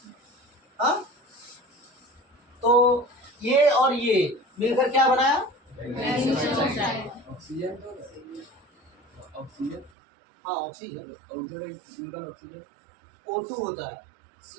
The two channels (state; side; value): drops out; left; at 9.9 s